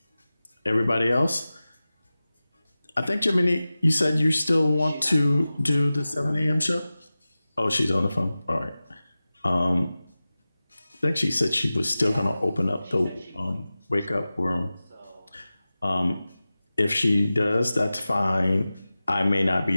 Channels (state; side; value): inverted; both; correlation -0.96